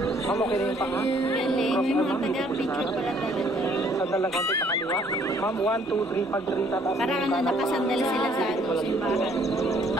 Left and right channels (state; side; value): normal; both; correlation 0.63